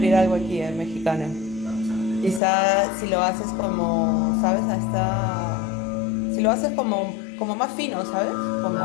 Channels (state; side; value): drops out; right; at 2.4 s